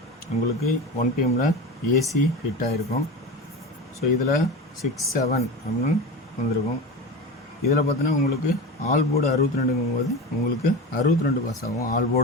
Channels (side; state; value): both; normal; correlation 0.27